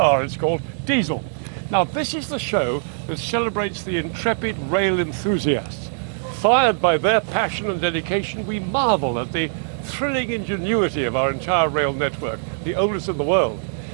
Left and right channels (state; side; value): silent; left; 62 dB below the other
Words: it's called, diesel. Now this is the show that celebrates the intrepid rail enthusiasts. Fired by their passion and dedication, we marvel at the thrilling ingenuity of our entire rail network, the oldest in the world,